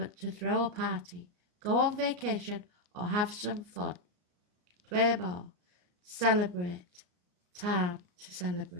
to throw a party, go on vacation, or have some fun. Play more. Celebrate. Time to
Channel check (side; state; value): left; late; 33 ms